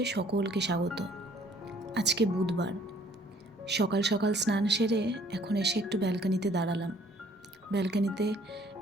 সকলকে স্বাগত। আজকে বুধবার, সকাল সকাল স্নান সেরে এখন এসে একটু ব্যালকনিতে দাঁড়ালাম। ব্যালকনিতে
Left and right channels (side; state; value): both; normal; correlation 0.60